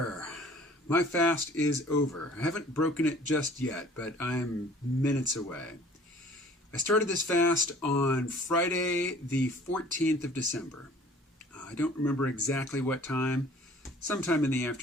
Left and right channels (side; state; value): both; normal; correlation 0.51